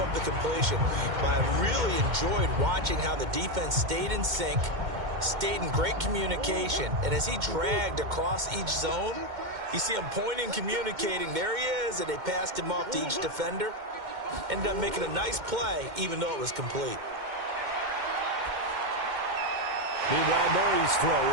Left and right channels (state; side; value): late; left; 2.1 ms